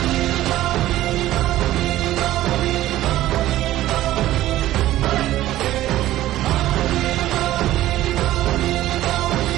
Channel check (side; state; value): left; quieter; 14.7 dB